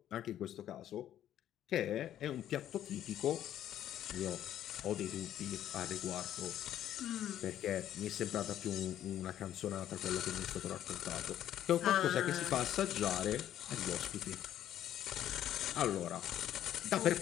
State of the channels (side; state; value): right; quieter; 11.4 dB